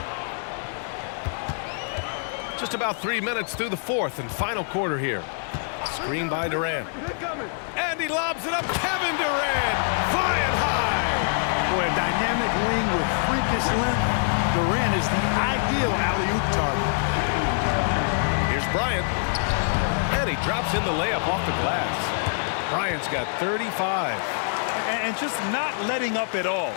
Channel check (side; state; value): right; silent; digital silence